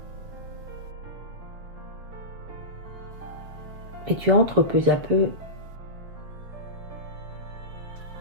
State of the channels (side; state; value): left; late; 7.5 ms